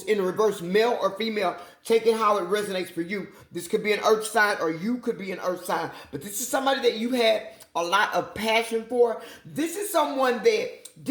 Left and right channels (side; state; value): both; identical; correlation 1.00